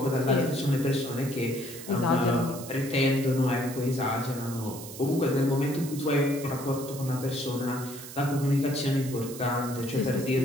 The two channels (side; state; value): right; noise; hiss, 13 dB below the sound